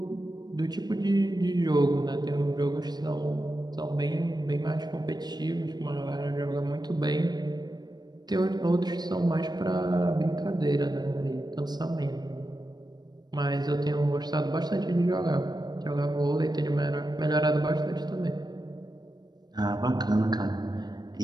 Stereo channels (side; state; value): left; late; 0.20 ms